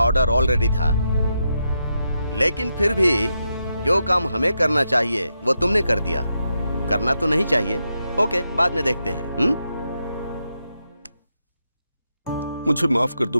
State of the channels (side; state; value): both; inverted; correlation -0.85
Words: ऑर्डर ऑलरेडी था, लेकिन फिर भी जो काम हमें करना चाहिए वो तुमने कर दिया। करना तो नहीं चाहिए। ओके, बाद में देखते हैं। मुझे माफ कर दो